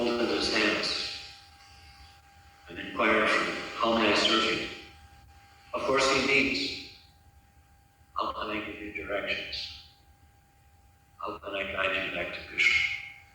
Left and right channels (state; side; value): identical; both; correlation 1.00